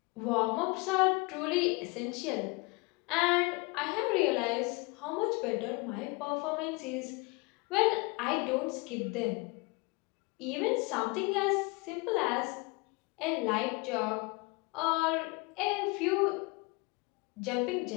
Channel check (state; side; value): quieter; right; 27.1 dB